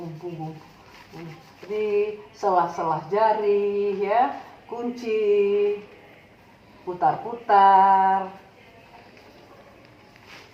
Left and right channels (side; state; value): both; identical; correlation 1.00